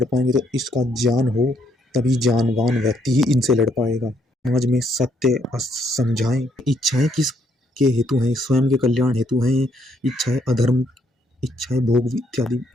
पाएंगे। तो इसका ज्ञान हो तभी जानवान व्यक्ति ही इनसे लड़ पाएगा। समाज में सत्य समझाएं। इच्छाएं किस के हेतु हैं, स्वयं के कल्याण हेतु हैं। इच्छाएं अधर्म, इच्छाएं भोग इत्यादि।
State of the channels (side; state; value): both; normal; correlation 0.71